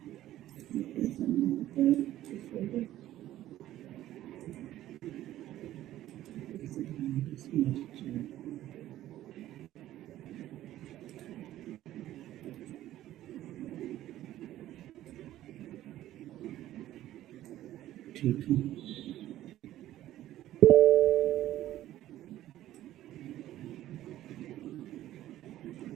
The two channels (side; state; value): left; quieter; 13.7 dB